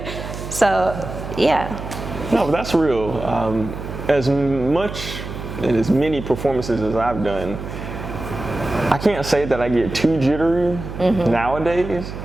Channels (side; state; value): right; noise; hum, 9 dB below the sound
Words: So, yeah. No, but that's real. As much and as many performances as I've done, I can't say that I get too jittery nowadays,